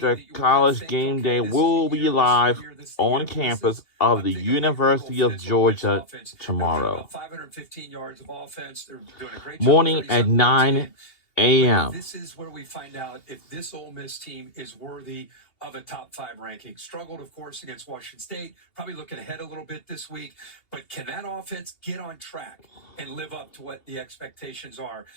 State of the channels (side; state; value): right; late; 2.7 ms